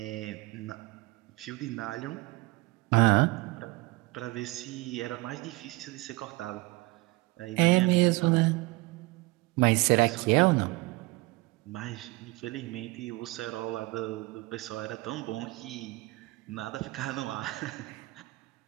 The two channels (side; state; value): left; quieter; 23.2 dB